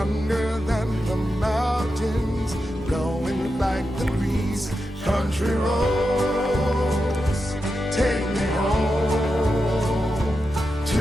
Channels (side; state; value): both; normal; correlation 0.88